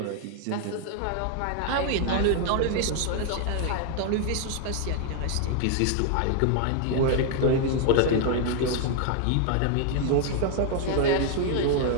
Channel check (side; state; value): both; different; correlation 0.00